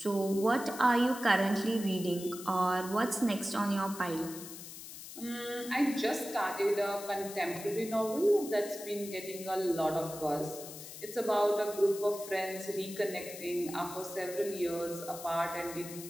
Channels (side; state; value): left; noise; hiss, 12 dB below the sound